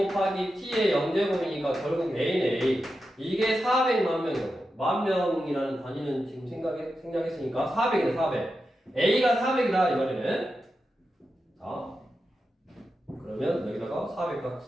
t의 0제곱이니까 결국 a는 a. 이게 400만 명이라고. 만 명이라는 단위는 지금 생략했으니까 400이네 400. a가 400이다 이 말이네. 자, 그러면 여기다가 400각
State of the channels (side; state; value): both; normal; correlation 0.89